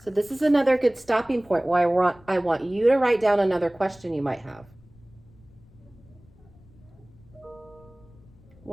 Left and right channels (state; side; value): noise; left; rumble, 26 dB below the sound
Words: So this is another good stopping point where I want you to write down another question you might have.